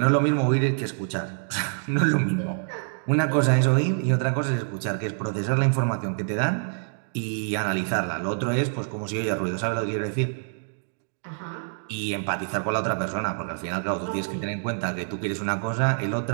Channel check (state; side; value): silent; left; digital silence